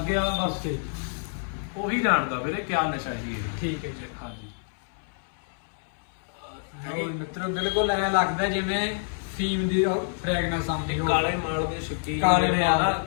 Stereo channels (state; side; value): silent; right; digital silence